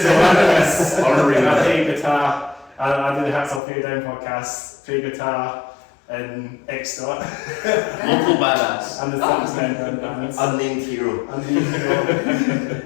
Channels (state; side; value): drops out; right; at 3.6 s